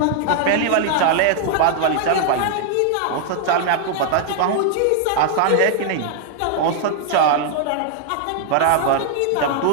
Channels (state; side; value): different; both; correlation -0.01